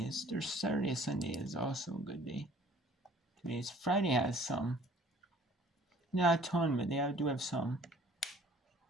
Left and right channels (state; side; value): normal; both; correlation 0.54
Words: There's Saturday, Sunday is also a good day. Today's Friday has some. Not a ton, but they do have some.